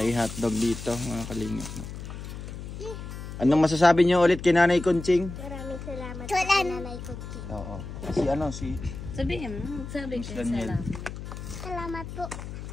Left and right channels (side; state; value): left; noise; hum, 9 dB below the sound